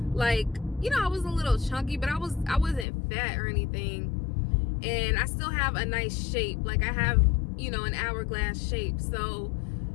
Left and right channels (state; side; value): drops out; right; at 2.9 s